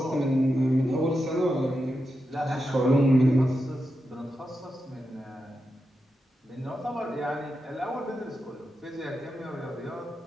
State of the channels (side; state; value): both; normal; correlation 0.88